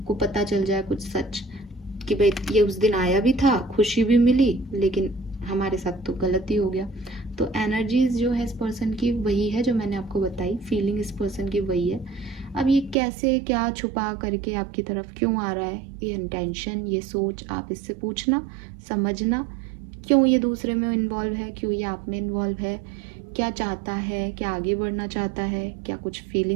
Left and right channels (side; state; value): left; drops out; at 13.0 s